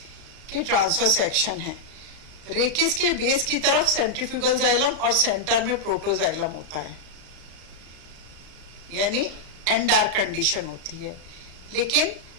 के ट्रांसफर सेक्शन है। रेकिस के बेस की तरफ सेंट्रीफ्यूगल जाइलम और सेंटर में प्रोटोजाइलम होता है, यानी एंडार्क कंडीशन होती है। लेकिन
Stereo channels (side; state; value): left; late; 34 ms